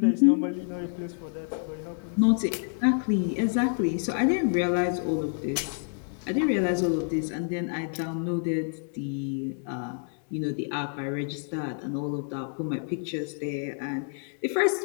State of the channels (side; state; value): right; silent; digital silence